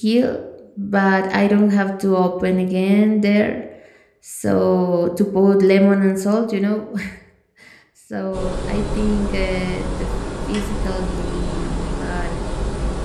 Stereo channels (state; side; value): identical; both; correlation 1.00